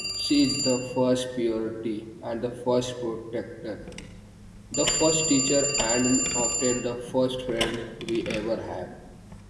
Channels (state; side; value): identical; both; correlation 1.00